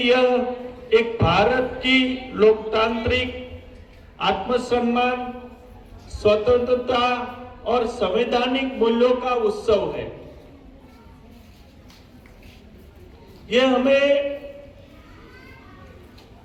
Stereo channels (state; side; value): identical; both; correlation 1.00